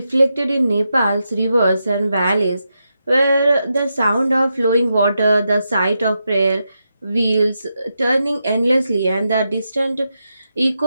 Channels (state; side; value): inverted; both; correlation -0.86